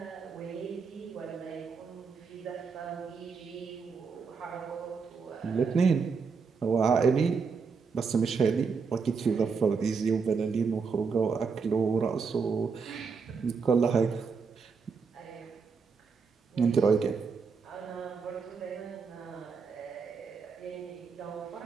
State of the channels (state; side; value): quieter; left; 5.4 dB